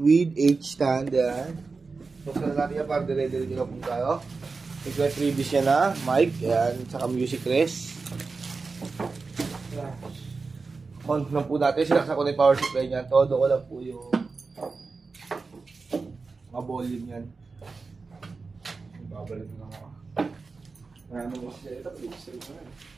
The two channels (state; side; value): quieter; left; 4.3 dB